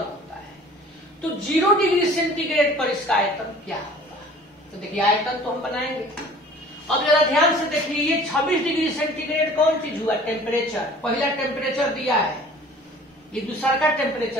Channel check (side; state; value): both; normal; correlation 0.48